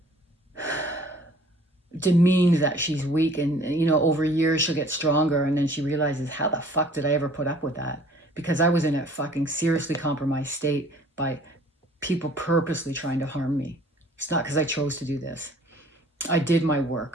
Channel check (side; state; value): both; normal; correlation 0.53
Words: demeaned that she's weak, and over years she'll get stronger, and then she realizes, how the fuck did I ever put up with that? Because I was in a fucking seriously compromised state by people purposely trying to harm me. It's not because I chose to do this. I did my